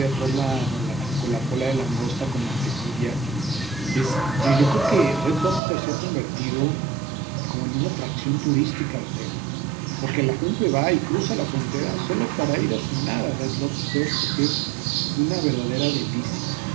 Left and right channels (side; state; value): left; drops out; at 5.6 s